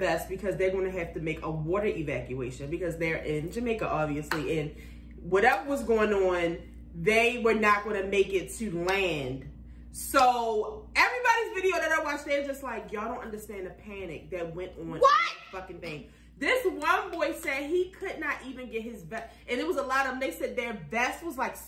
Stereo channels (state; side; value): identical; both; correlation 1.00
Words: because they're going to have to make a water evacuation because they're in Jamaica, obviously. And whatever was going on, they were not going to make it to land. So everybody's video that I watched, they're just like, y'all don't understand the panic that went on in that fucking thing. This one boy said he could not even get his vest. And it was a lot of them. They said their vest was like